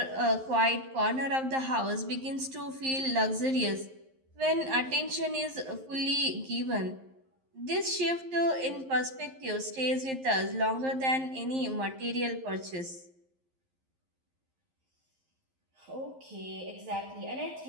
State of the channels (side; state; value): left; late; 11 ms